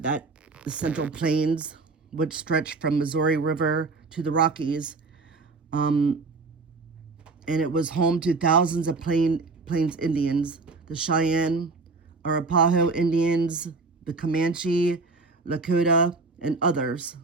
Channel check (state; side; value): quieter; left; 3.8 dB